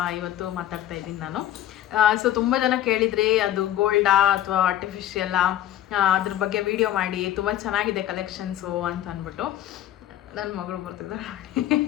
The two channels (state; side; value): quieter; right; 12.6 dB